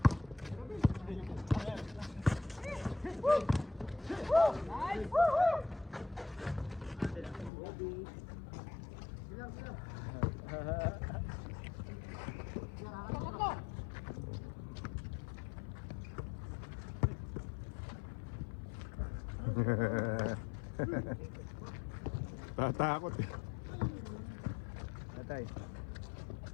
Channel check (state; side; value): drops out; right; at 7.5 s